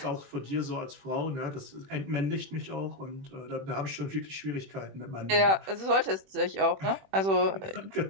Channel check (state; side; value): late; left; 21 ms